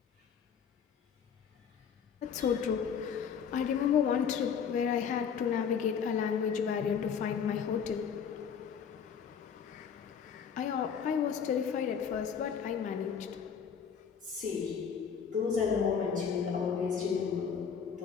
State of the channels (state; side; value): quieter; right; 7.1 dB